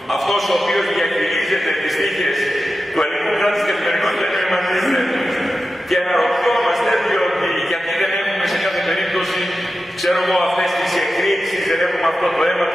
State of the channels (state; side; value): normal; both; correlation 0.92